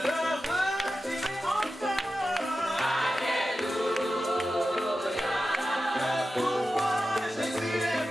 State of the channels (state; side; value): normal; both; correlation 0.92